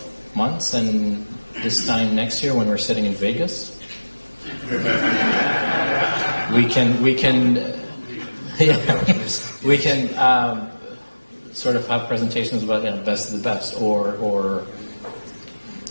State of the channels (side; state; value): both; inverted; correlation -1.00